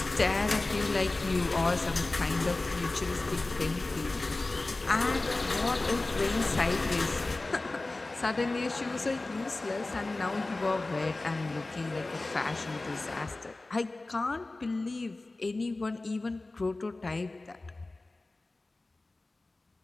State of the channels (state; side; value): quieter; right; 3.1 dB